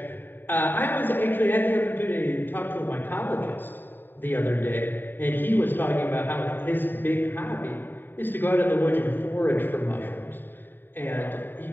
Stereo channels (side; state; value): right; late; 0.093 ms